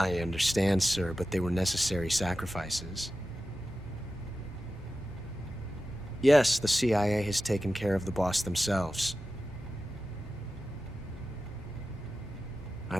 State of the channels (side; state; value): both; normal; correlation 0.93